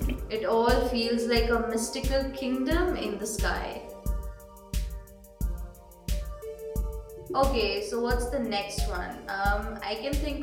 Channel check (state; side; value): identical; both; correlation 1.00